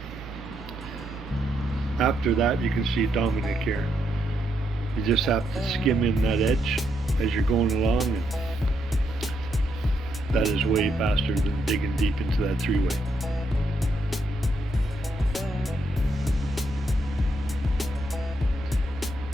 After that, you can see Dominic here. You just have to skim in that edge as you're going along, and that is way faster than digging deep into that three-way.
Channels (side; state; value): both; normal; correlation 0.78